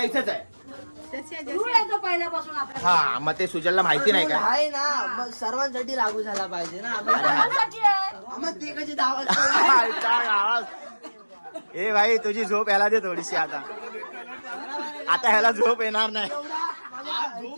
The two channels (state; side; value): inverted; both; correlation -1.00